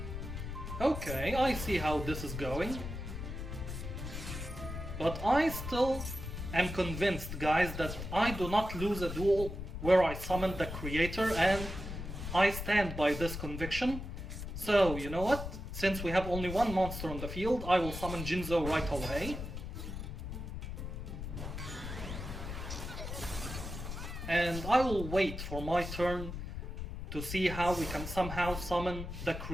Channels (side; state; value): left; noise; rumble, 7 dB below the sound